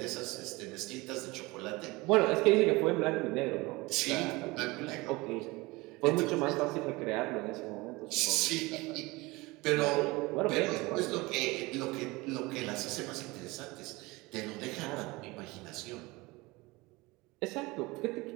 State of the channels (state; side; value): quieter; left; 22.8 dB